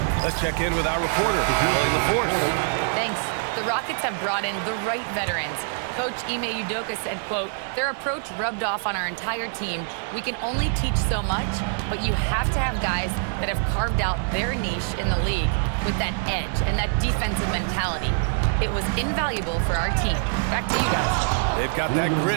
Let's check in with our reporter, Allie LaForce. Thanks. The Rockets have brought in the right veterans. Coach Ime Udoka said, quote, their approach rubbed off on our entire team. We can only teach so much, but you have to have guys that have carved out their niche in the league with that edge and that defensive mentality. It was invaluable for our team. Back to you guys. They've got that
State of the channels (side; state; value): left; silent; digital silence